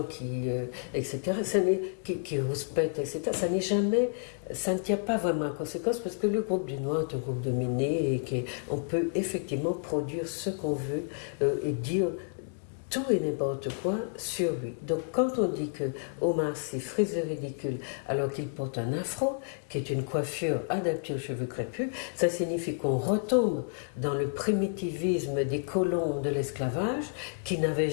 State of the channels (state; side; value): silent; right; digital silence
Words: etc., qui rouspètent, etc., ça ne tient pas vraiment en conséquence parce que le groupe du Noir est un groupe dominé et qu'on peut effectivement produire ce qu'on veut et dire tout et n'importe quoi sur lui. Donc quand on dit que Omar Sy frise le ridicule alors qu'il porte un afro, qui est une coiffure adaptée aux cheveux crépus, ça signifie qu'on retombe dans le primitivisme des colons de l'esclavage qui